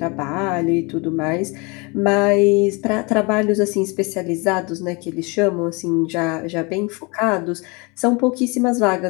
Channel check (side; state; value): right; quieter; 28.5 dB